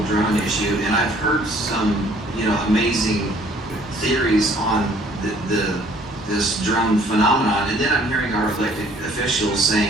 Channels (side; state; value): both; normal; correlation 0.58